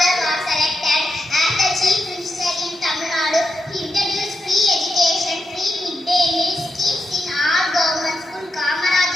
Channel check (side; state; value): both; normal; correlation 0.87